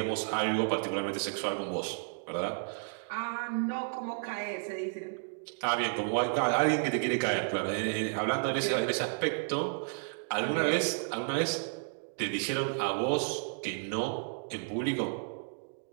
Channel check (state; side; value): silent; left; digital silence